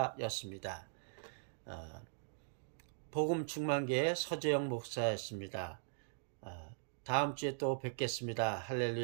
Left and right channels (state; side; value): silent; left; digital silence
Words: 복음 충만교회 서재영 목사였습니다. 다음 주에 또 뵙겠습니다.